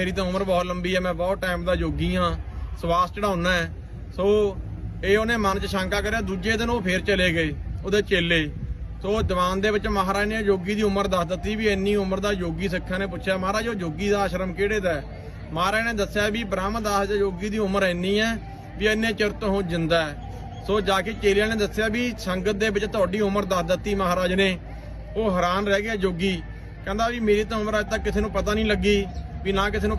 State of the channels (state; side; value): identical; both; correlation 1.00